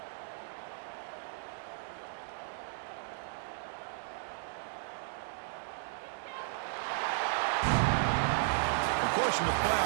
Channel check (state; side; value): silent; left; digital silence